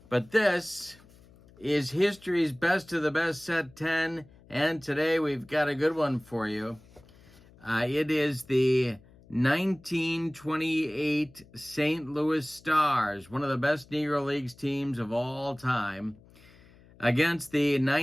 But this is history's best of the best, set 10, and today we've got a good one for you. It is the 1928 St. Louis Stars, one of the best Negro Leagues teams of all time, against the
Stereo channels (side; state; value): left; noise; hum, 26 dB below the sound